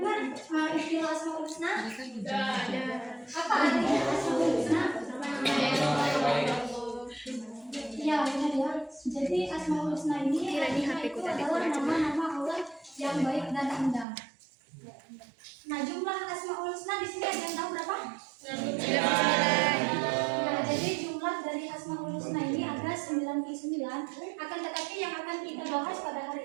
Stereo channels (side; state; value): left; drops out; at 14.1 s